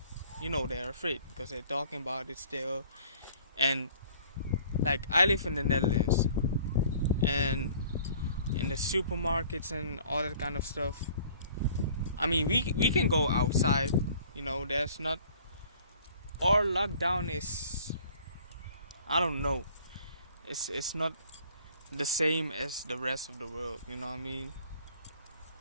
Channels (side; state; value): both; inverted; correlation -0.53